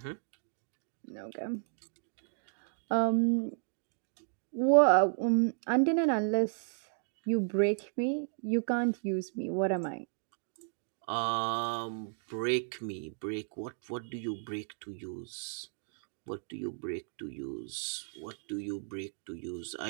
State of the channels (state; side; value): silent; left; digital silence